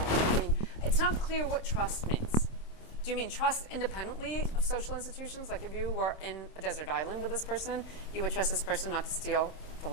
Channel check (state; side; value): late; right; 26 ms